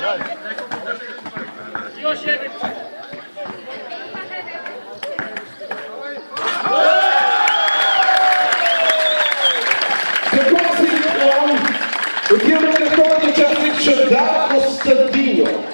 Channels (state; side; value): inverted; both; correlation -1.00